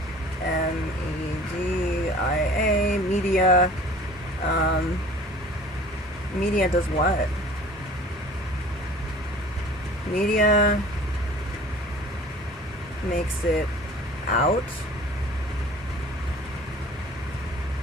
MEDIA, media. Media does what? Media makes it out.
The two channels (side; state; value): both; normal; correlation 0.46